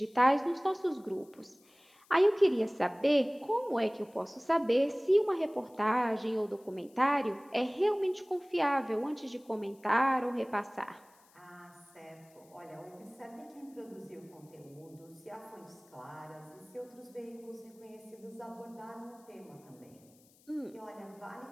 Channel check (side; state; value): left; noise; hiss, 29 dB below the sound